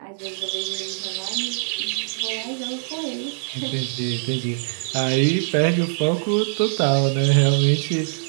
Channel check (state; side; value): silent; left; digital silence